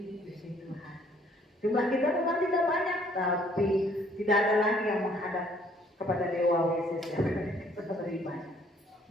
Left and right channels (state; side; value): normal; both; correlation 0.62